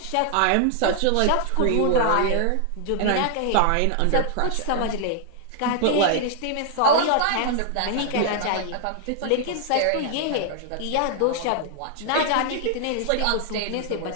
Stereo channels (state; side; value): different; both; correlation 0.00